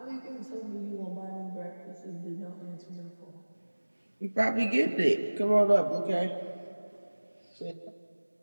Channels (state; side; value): inverted; both; correlation -1.00